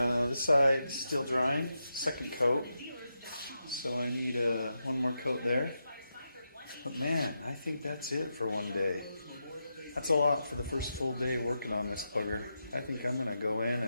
This side is still drying, second coat. So I need one more coat there. But man, I think that's it for one day. That's a lot for the first full day working on this bugger. I think I'm going to go in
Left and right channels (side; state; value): both; inverted; correlation -0.87